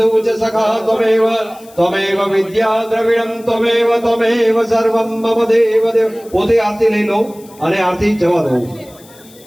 च सखा त्वमेव विद्या द्रविणं त्वमेव सर्वं मम देव देव। पोते आरती लई लो અને આરતી જવા દો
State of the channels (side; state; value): left; noise; hiss, 24 dB below the sound